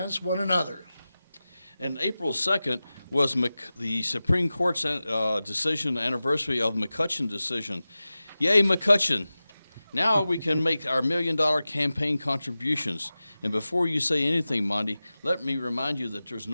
one another. And April 2nd was the Supreme Court's decision anniversary of the McCutcheon decision. Yay, McCutcheon. Now we can make our $1 million campaign contributions. And before you say anything, Monty, let me remind you that there's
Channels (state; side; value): inverted; both; correlation -0.95